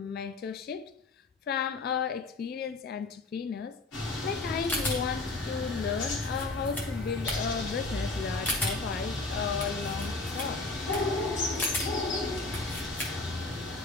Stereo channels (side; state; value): right; quieter; 3.4 dB